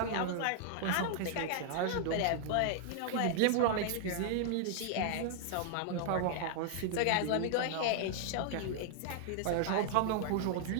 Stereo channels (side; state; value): both; different; correlation -0.01